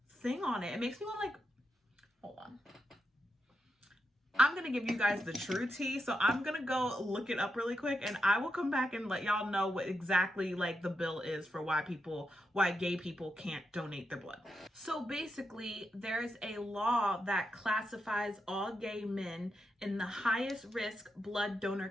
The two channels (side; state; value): both; normal; correlation 0.85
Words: thing on it. It makes me want to like, hold on. I'm going to give you guys the true tea. So I'm going to go look it up really quick, and I will come back and let y'all know what exactly like the bill is for why gay people can't donate their blood. So basically, there's a law that classifies all gay men in the highest risk blood donor